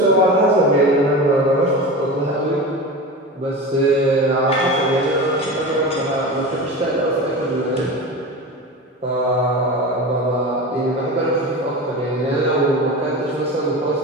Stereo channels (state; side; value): normal; both; correlation 0.28